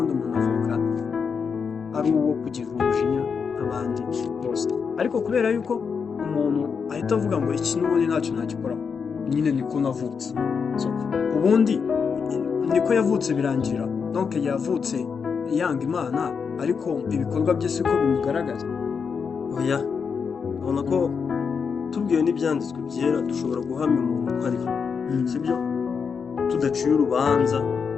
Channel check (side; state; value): right; quieter; 6.0 dB